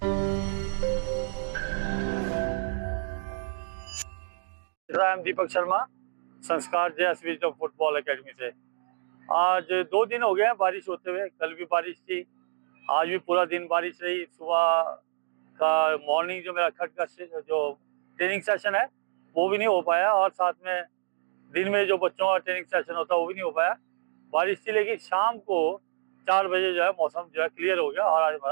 राम दीपक शर्मा संस्कार जेएसवी जो फुटबॉल एकेडमी से। आज 2 दिन हो गए हैं बारिश होते हुए। कल भी बारिश थी, आज भी पूरा दिन बारिश रही। सुबह का मॉर्निंग जो मेरा खट का जो ट्रेनिंग सेशन है वो भी नहीं हो पाया, और साथ में दिन में जो बच्चों का ट्रेनिंग सेशन होता है वो भी नहीं हो पाया, बारिश थी। लेकिन शाम को 4 बजे जो है मौसम जो है क्लियर हो गया और आज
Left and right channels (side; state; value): left; silent; digital silence